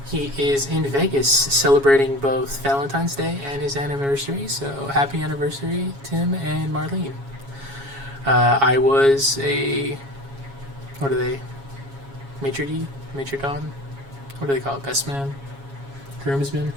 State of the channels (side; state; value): left; late; 7.2 ms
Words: He is in Vegas celebrating both Valentine's Day and his anniversary, so happy anniversary, Tim and Marlene. I was a... what are they? Maitre d'? Maitre d'? What do they call it? Best man? Groomsman?